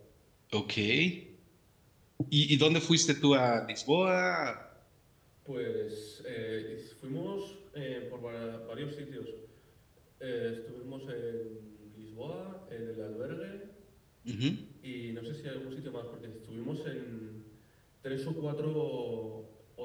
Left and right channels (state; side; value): identical; both; correlation 1.00